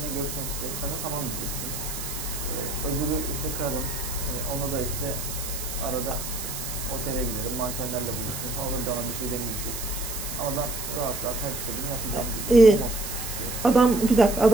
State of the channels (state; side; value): noise; right; hiss, 6 dB below the sound